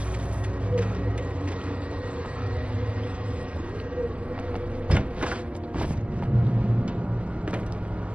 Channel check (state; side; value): late; left; 0.059 ms